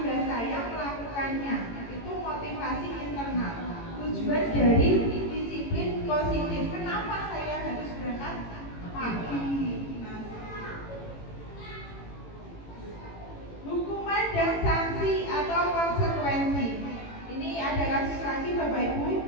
saya melakukannya. Itu motivasi internal. Tujuan dari disiplin positif. Kenapa saya harus berangkat pagi? Hukuman dan sanksi atau konsekuensi. Ini ada kasus lagi Bapak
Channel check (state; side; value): late; right; 18 ms